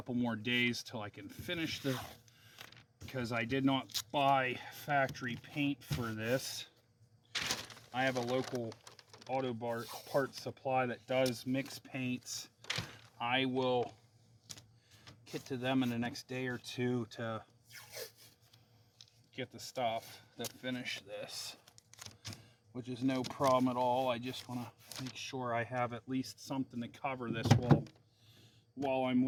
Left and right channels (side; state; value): both; identical; correlation 1.00